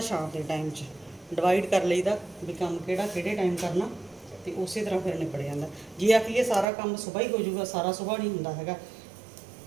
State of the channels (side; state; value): left; drops out; at 6.7 s